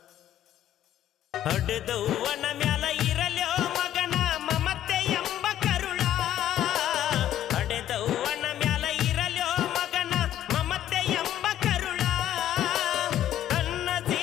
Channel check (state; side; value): quieter; right; 11.9 dB